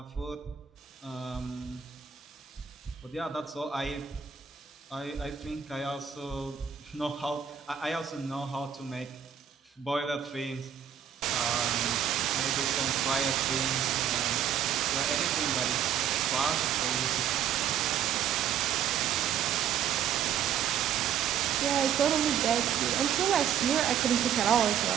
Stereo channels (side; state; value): left; quieter; 8.9 dB